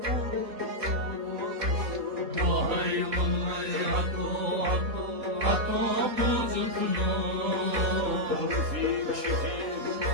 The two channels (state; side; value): late; left; 3.8 ms